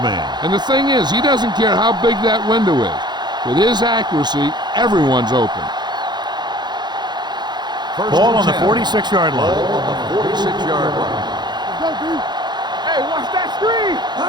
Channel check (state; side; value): late; left; 0.21 ms